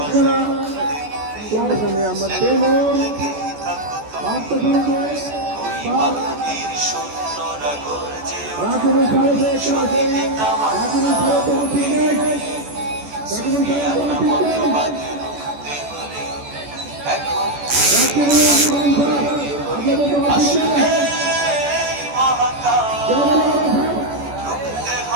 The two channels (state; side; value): late; left; 14 ms